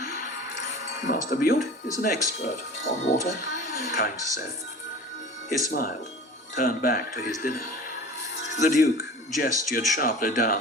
Master Butte is an expert on water, Kynes said. He smiled, turned back to his dinner. The Duke gestured sharply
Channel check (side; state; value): both; normal; correlation 0.39